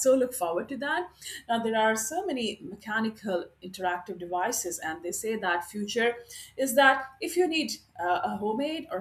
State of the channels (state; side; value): identical; both; correlation 1.00